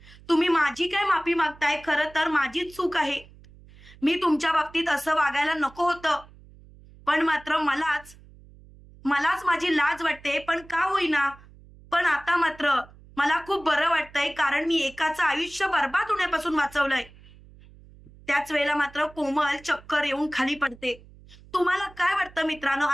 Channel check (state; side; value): noise; right; hum, 23 dB below the sound